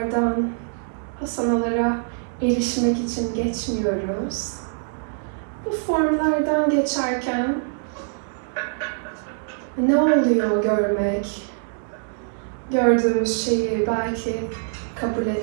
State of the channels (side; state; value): left; silent; digital silence